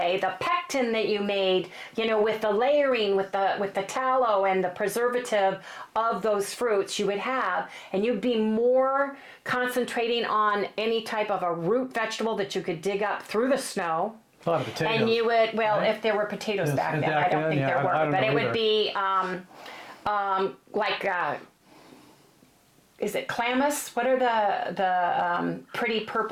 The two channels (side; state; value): both; identical; correlation 1.00